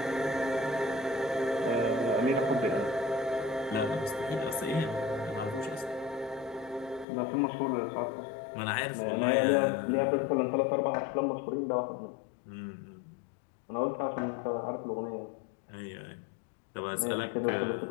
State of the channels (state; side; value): drops out; right; at 7.1 s